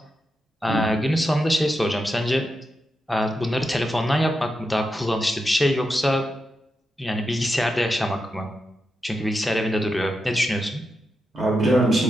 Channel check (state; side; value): normal; both; correlation 0.87